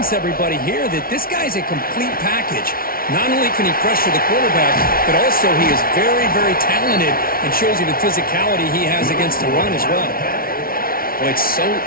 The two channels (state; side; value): late; right; 0.43 ms